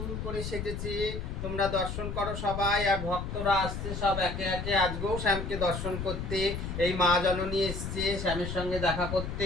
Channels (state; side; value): noise; left; rumble, 5 dB below the sound